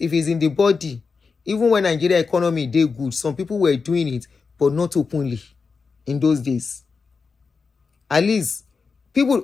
it's in the body, even when Nigeria economy did good, some people were doing it, but not openly in those days. At least,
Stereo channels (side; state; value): right; quieter; 4.9 dB